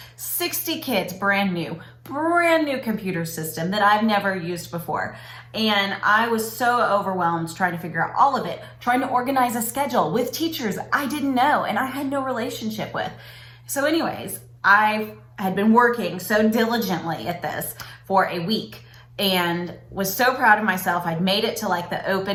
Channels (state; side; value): identical; both; correlation 1.00